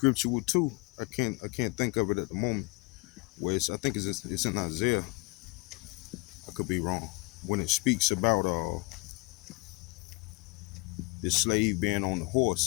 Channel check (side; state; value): right; quieter; 26.2 dB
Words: too. I can't think of it at the moment. Where I think it's in Isaiah. I could be wrong. When it speaks about the slave being on the